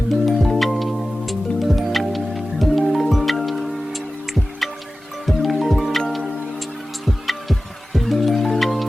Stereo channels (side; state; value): both; normal; correlation 0.96